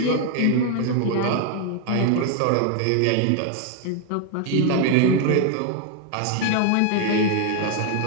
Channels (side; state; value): both; different; correlation 0.01